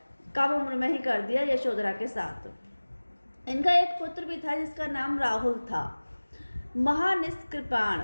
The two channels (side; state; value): both; inverted; correlation -1.00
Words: कम उम्र में ही कर दिया यशोधरा के साथ। इनका एक पुत्र भी था जिसका नाम राहुल था।